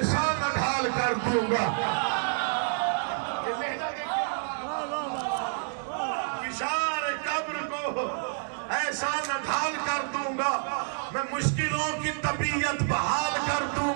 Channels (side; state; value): left; silent; digital silence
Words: نہ ڈھال کر دوں گا. فشار قبر کو ایسا نہ ڈھال کر دوں گا, میں مشکلوں کی طبیعت بحال کر دوں